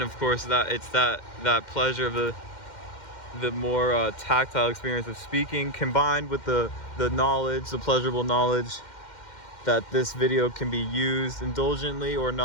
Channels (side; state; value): right; late; 2.1 ms